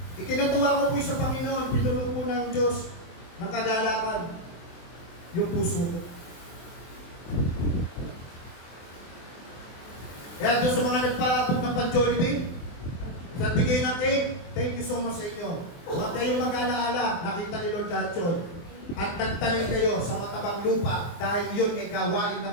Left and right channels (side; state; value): right; late; 23 ms